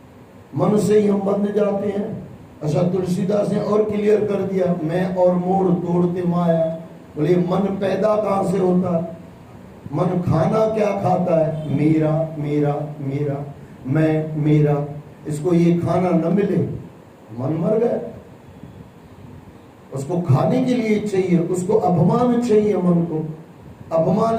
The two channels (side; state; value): both; identical; correlation 1.00